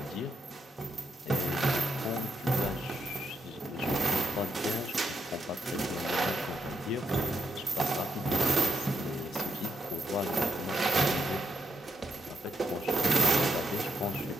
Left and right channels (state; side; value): normal; both; correlation 0.80